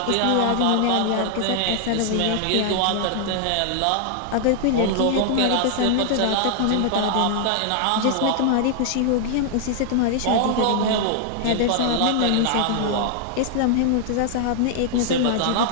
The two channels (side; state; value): both; different; correlation 0.00